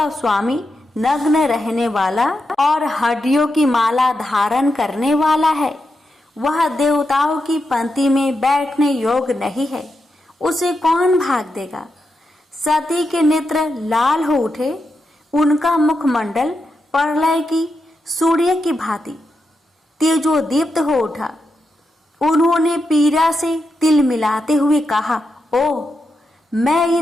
स्वामी, नग्न रहने वाला और हड्डियों की माला धारण करने वाला है। वह देवताओं की पंक्ति में बैठने योग्य नहीं है। उसे कौन भाग देगा? सती के नेत्र लाल हो उठे। उनका मुखमंडल प्रलय की सूर्य की भांति तेजोदीप्त हो उठा। उन्होंने पीड़ा से तिल मिलाते हुए कहा, ओ, मैं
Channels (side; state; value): both; normal; correlation 0.86